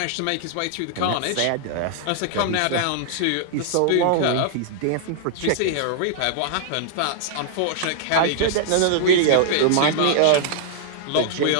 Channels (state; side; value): different; both; correlation -0.01